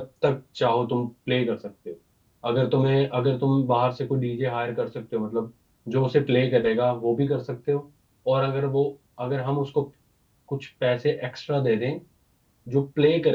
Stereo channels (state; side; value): identical; both; correlation 1.00